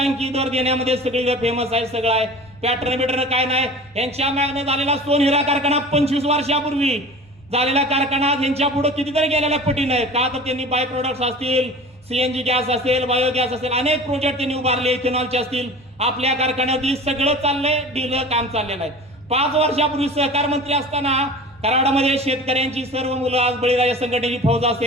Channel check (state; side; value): normal; both; correlation 0.39